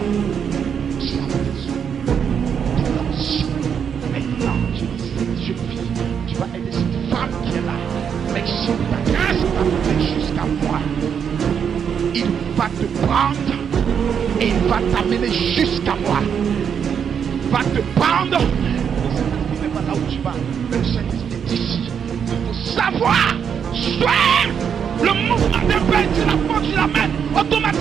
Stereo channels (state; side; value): quieter; left; 7.5 dB